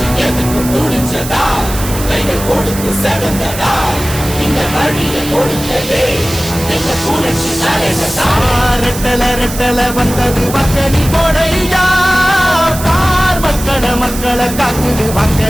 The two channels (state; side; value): noise; right; hiss, 10 dB below the sound